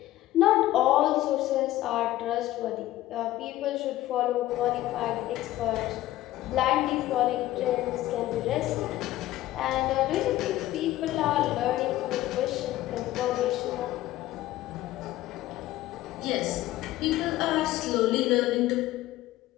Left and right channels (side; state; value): right; quieter; 15.3 dB